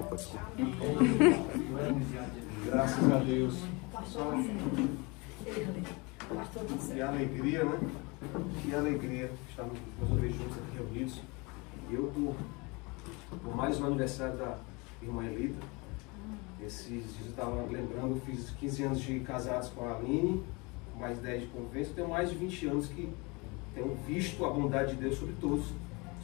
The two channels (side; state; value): right; quieter; 27.4 dB